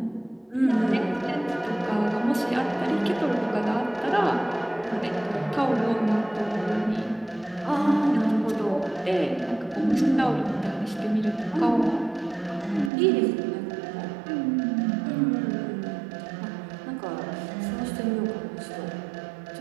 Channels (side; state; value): left; drops out; at 12.9 s